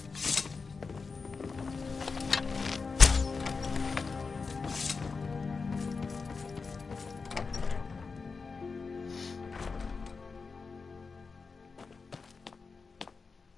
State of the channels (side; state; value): right; quieter; 4.7 dB